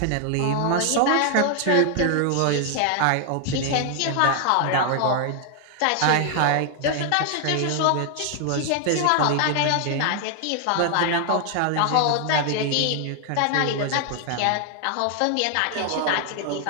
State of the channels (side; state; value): both; different; correlation 0.00